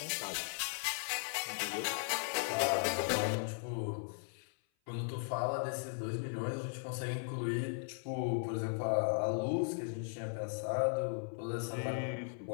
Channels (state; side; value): silent; right; 53 dB below the other